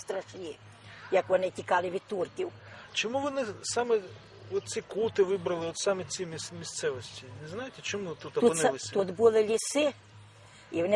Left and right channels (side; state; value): both; identical; correlation 1.00